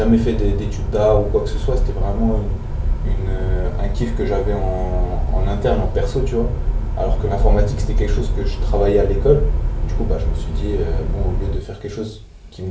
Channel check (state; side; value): identical; both; correlation 1.00